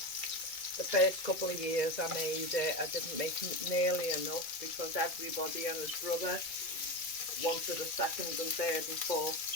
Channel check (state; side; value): late; right; 2.2 ms